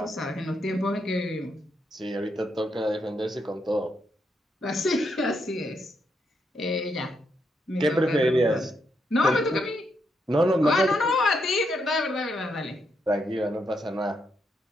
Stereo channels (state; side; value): normal; both; correlation 0.79